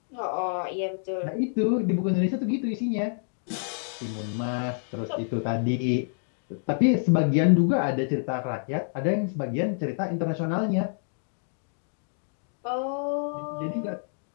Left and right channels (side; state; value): right; silent; digital silence